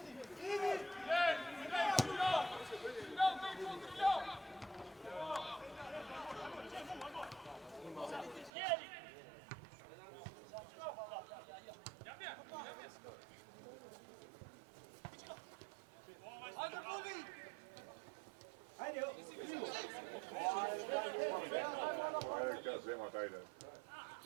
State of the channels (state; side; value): drops out; left; at 8.5 s